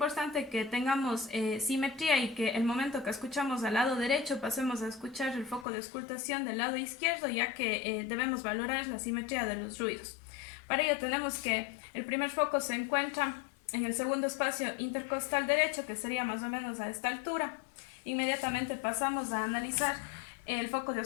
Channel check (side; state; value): right; drops out; at 5.7 s